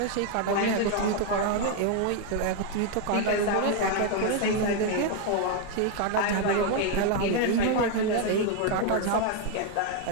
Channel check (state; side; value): different; both; correlation 0.01